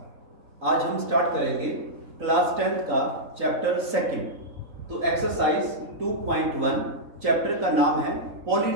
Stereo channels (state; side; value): late; left; 3.9 ms